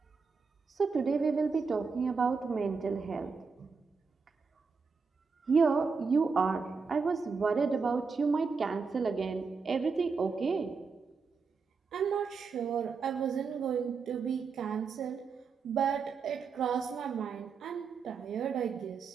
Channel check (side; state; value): left; quieter; 5.1 dB